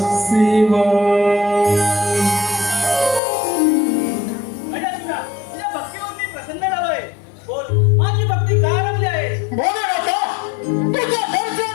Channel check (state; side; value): drops out; right; at 3.2 s